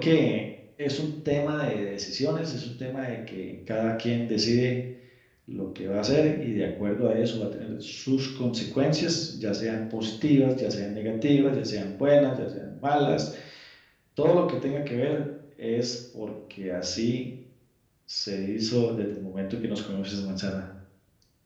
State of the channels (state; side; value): identical; both; correlation 1.00